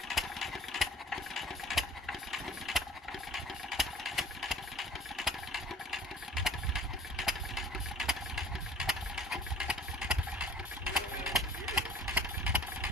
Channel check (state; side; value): normal; both; correlation 0.44